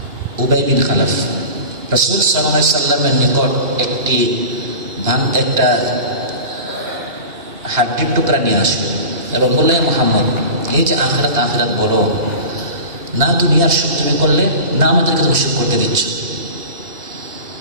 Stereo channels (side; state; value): left; late; 2.9 ms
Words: উবাই বিন খালাফ রাসূল সাল্লাল্লাহু আলাইহি সাল্লামের নিকট একটা হাড্ডির টুকরা নিয়ে আসলো এবং বললেন, মুহাম্মদ, এই যে আখিরাত আখিরাত বলো না, দুনিয়ার সুখ তুমি করলে না, আমাদেরকে তুমি সুখ করতে দিচ্ছ।